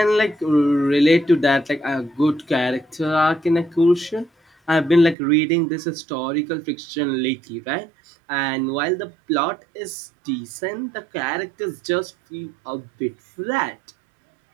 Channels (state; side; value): drops out; left; at 5.2 s